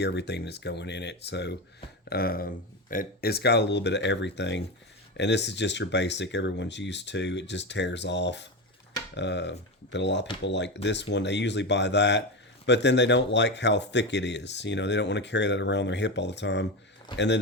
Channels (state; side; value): normal; both; correlation 0.18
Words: everything that's going in it. So it's got a little bit of everything. And this is just your basic everyone's used to. It just tears off. But a lot of people like this one. They usually buy that. But then they don't like how thick it is. You know, they don't want to carry that around their hip all the time. And then